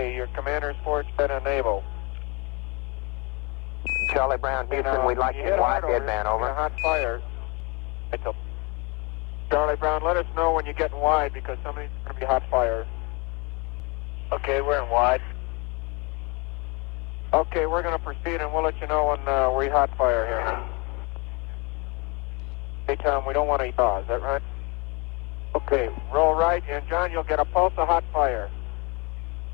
your commander's forward set enable. Charlie Brown, Houston, we'd like you in wide deadband, over. Hot fire. Charlie Brown, let us know when you get in wide because somebody's going to be hot fire. Okay, we're in wide. Okay, we're going to proceed and we'll let you know when we hot fire here. Hey, Tom, we don't want to yaw, is that right? Okay, roll right, and John, you'll get a pulse of hot fire.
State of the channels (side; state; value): right; quieter; 29.0 dB